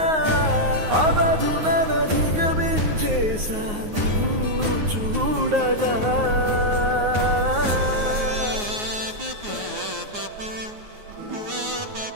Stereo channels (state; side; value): late; left; 9.5 ms